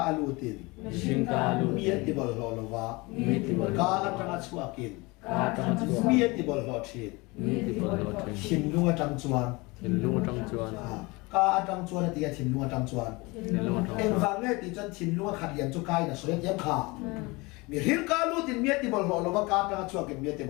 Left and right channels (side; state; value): right; quieter; 24.8 dB